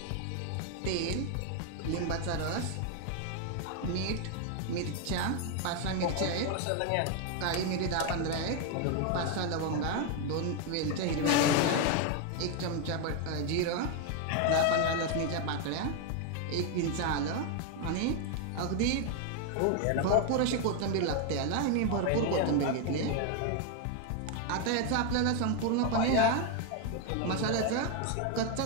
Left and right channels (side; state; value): both; different; correlation 0.01